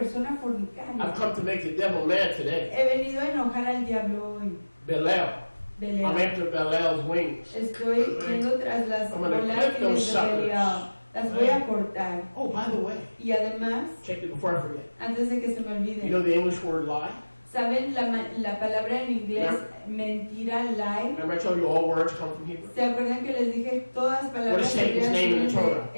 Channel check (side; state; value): both; inverted; correlation -1.00